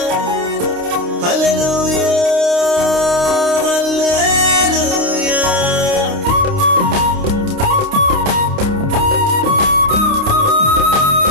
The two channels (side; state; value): left; late; 29 ms